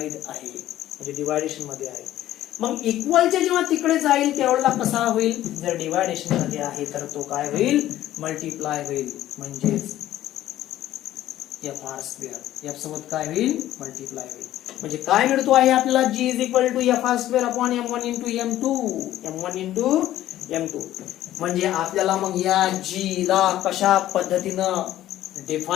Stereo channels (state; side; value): quieter; right; 13.6 dB